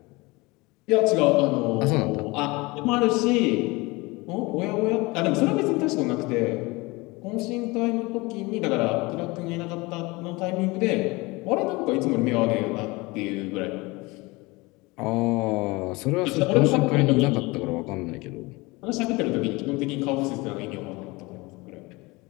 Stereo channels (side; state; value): right; quieter; 23.8 dB